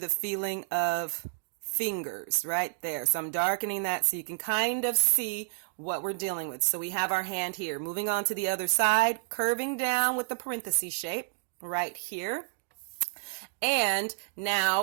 feeling of fingers right there. So I'm darkening that so you can kind of see what we're dealing with. So we have our hand here. Moving on to the other side, curving down with the parenthesis shape right here. And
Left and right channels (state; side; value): silent; left; digital silence